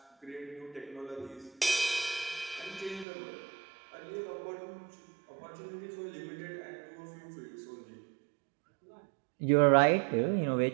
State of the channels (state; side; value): drops out; left; at 3.1 s